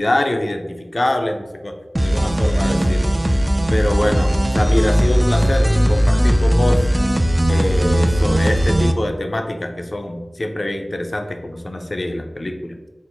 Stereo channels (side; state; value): both; normal; correlation 0.98